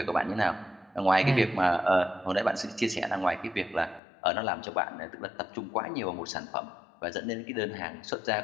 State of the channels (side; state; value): right; drops out; at 4.0 s